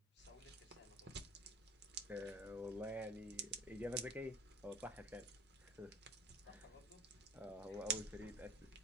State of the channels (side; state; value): both; normal; correlation 0.44